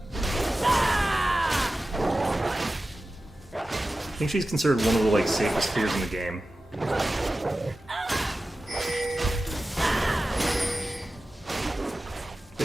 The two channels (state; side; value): normal; both; correlation 0.95